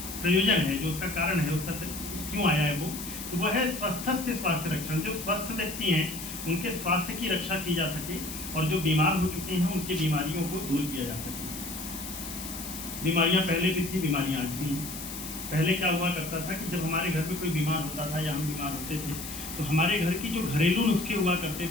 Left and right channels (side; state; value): left; noise; hiss, 9 dB below the sound